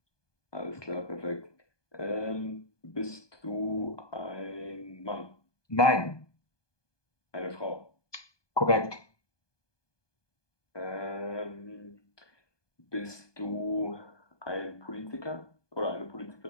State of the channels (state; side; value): late; right; 1.2 ms